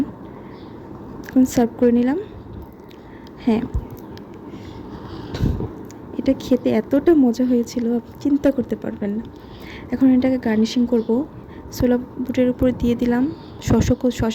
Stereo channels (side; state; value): both; identical; correlation 1.00